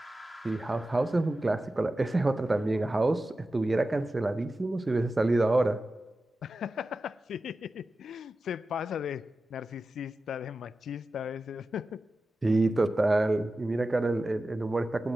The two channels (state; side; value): normal; both; correlation 0.93